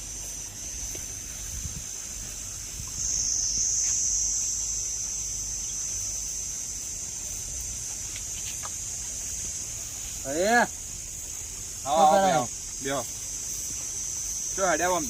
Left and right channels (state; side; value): noise; right; hum, 18 dB below the sound